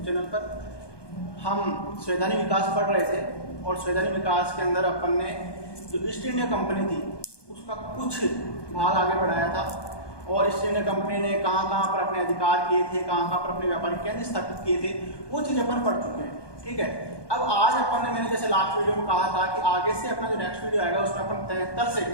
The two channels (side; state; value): right; late; 1.2 ms